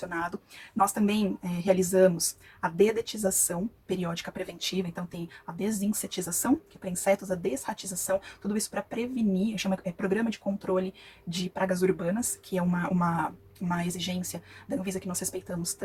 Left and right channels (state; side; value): identical; both; correlation 1.00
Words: Nós também realizamos a dedetização periódica preventiva, então tem a desinsetização, que é para insetos, a desratização, tudo isso para prevenir, chama Programa de Controle de Pragas Urbanas, que é uma exigência da Anvisa que nós respeitamos